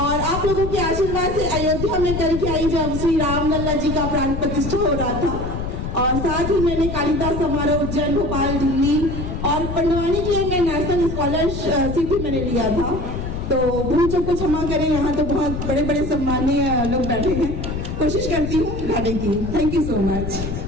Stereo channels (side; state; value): left; noise; rumble, 5 dB below the sound